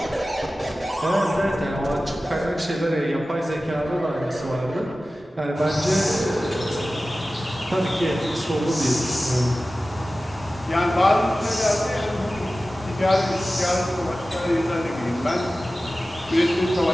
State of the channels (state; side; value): normal; both; correlation 0.96